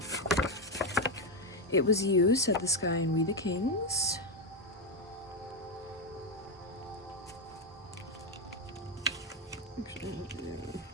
It was you, said the sky and we the kings.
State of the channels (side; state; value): both; normal; correlation 0.06